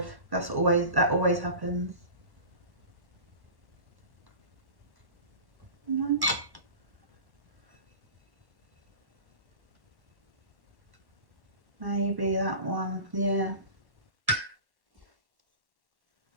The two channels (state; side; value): late; left; 1.1 ms